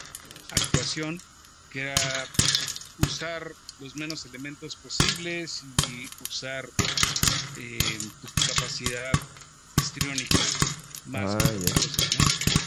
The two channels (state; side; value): identical; both; correlation 1.00